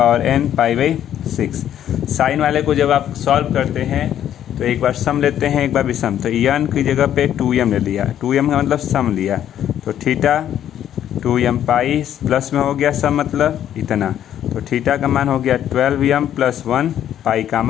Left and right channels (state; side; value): quieter; right; 10.6 dB